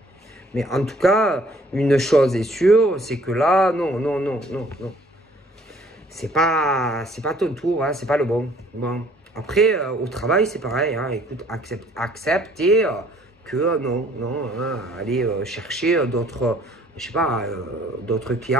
Mais en tout cas, une chose est sûre, c'est que là, non. C'est pas ton tour, hein, c'est pas le bon. Bon. Après, au travail, c'est pareil. Hein, écoute, accepter que non, hein, aller chercher d'autres, je sais pas, d'autres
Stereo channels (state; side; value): normal; both; correlation 0.58